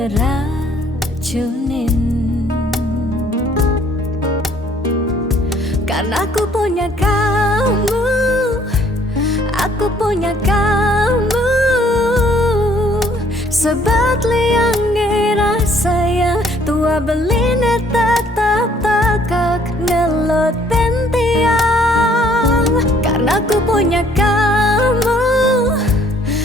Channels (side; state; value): both; normal; correlation 0.62